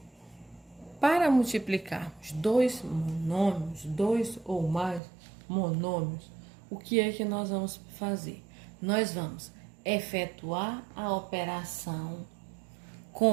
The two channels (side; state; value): left; drops out; at 5.0 s